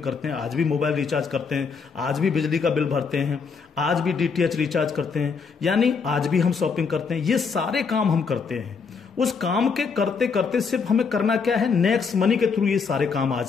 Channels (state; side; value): quieter; right; 5.4 dB